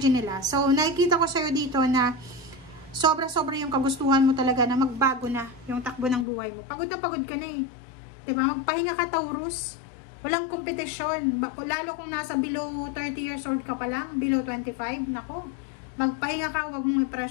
nila. So, nakikita ko sa'yo dito na sobra-sobra yung kagustuhan mo talaga na magbago na yung takbo ng buhay mo. Pagod ka na eh. Diba? Magpahinga ka, Taurus. Walang kompetisyon. Lalo kung nasa below 30 years old ka pa lang, below 25, nako. Magpahinga ka, wag mong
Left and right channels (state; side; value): drops out; right; at 6.2 s